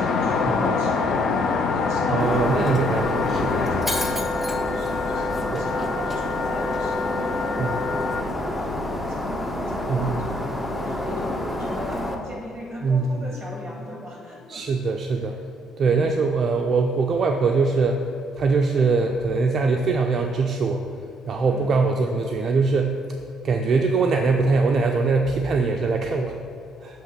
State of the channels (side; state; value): both; normal; correlation 0.70